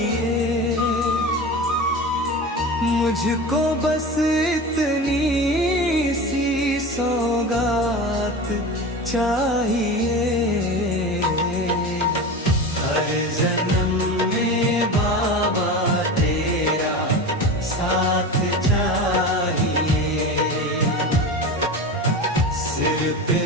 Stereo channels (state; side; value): normal; both; correlation 0.29